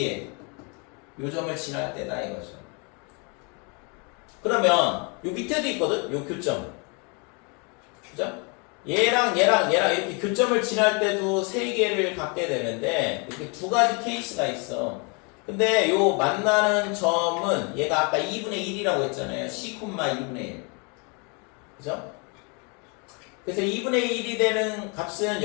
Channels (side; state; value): right; quieter; 33.6 dB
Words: 요 점을 지날 때다 이거죠. 그러면 요 밑에도 있거든. 요 교점. 그죠? 얘랑 이렇게 교점을 지날 때도 세 개를 갖게 되는데, 이렇게 두 가지 케이스가 있어. 근데 요 만나는 점은 얘가 아까 2분의 1이라고 했잖아요. c, 2분의 1. 그죠? 그래서 2분의 1이 되는 값은